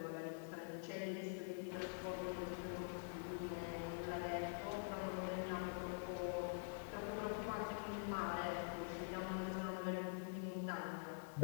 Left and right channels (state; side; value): silent; right; digital silence